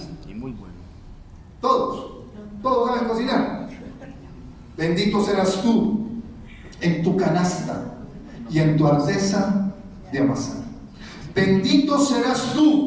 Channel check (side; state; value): both; identical; correlation 1.00